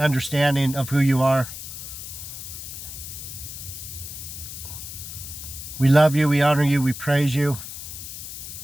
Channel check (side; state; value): left; noise; hiss, 10 dB below the sound